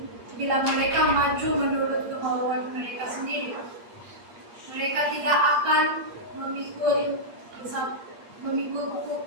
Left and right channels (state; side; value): late; left; 8.5 ms